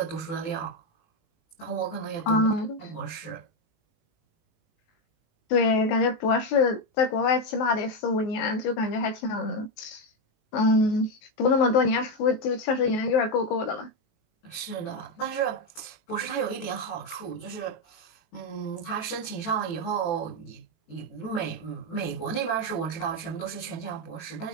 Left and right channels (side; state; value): right; late; 19 ms